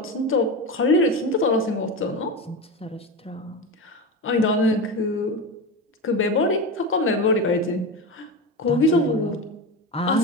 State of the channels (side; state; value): both; normal; correlation 0.21